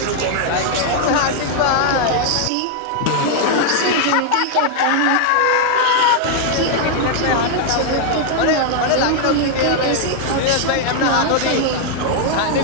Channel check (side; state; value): both; different; correlation 0.00